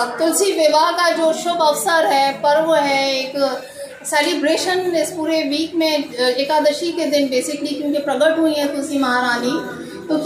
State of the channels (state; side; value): identical; both; correlation 1.00